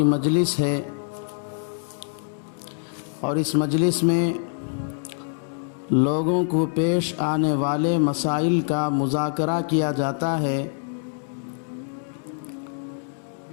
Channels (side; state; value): right; silent; digital silence